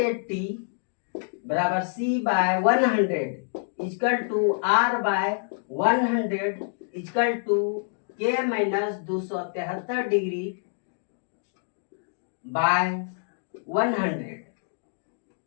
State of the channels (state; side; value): silent; right; digital silence